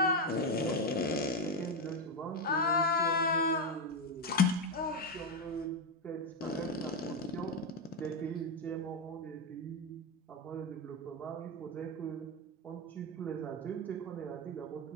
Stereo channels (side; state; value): both; normal; correlation 0.08